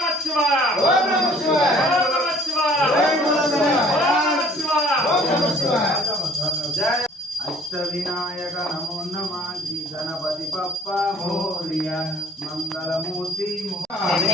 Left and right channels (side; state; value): both; normal; correlation 0.56